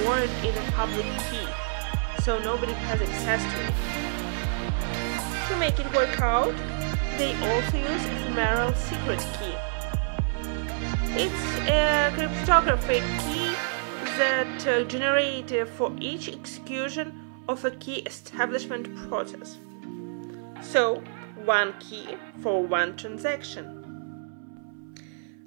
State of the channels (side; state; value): left; silent; 57 dB below the other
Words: in a public key, so nobody has access to it. To make it work out, they also use ephemeral secret key. It's a cryptographic key that generated for each execution of a key establishment process. So, one key for one transaction.